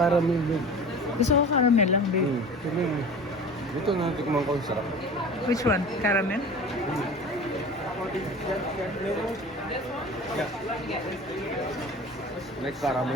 caramel din. Gusto ko caramel lang, babe. Sabi mo. Ito na, tikman ko yung sarap. Which one? Caramel? Yeah. Like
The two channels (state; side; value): normal; both; correlation 0.38